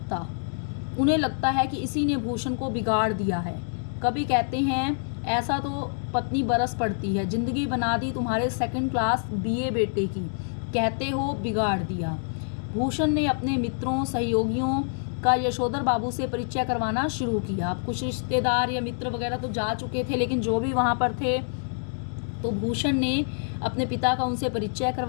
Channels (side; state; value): right; silent; digital silence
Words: उन्हें लगता है कि इसी ने भूषण को बिगाड़ दिया है। कभी कहते हैं ऐसा तो पत्नी बरस पड़ती है, जिंदगी बना दी तुम्हारे सेकंड क्लास बीए बेटे की, कहते हो बिगाड़ दिया। भूषण ने अपने मित्रों सहयोगियों का यशोधर बाबू से परिचय करवाना शुरू किया। अब कुछ रिश्तेदार या मित्र वगैरह तो जा चुके थे, लेकिन जो भी वहाँ पर थे तो भूषण ने अपने पिता का उनसे परिचय